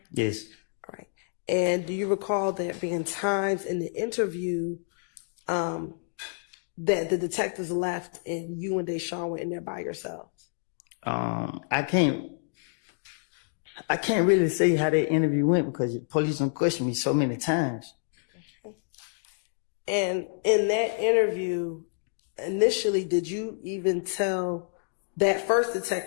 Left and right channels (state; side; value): silent; right; digital silence